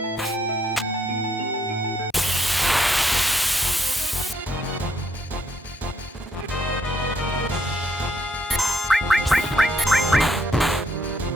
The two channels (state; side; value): normal; both; correlation 0.73